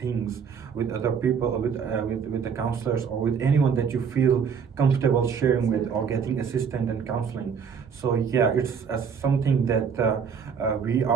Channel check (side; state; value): left; quieter; 6.7 dB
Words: with other people, with the counselors, or with anyone that you feel comfortable sharing with or getting assistance and counseling. So yeah, it's something that we